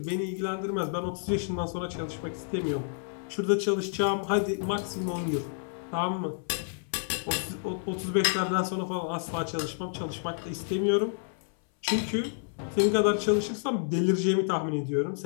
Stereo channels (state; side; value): silent; right; 58 dB below the other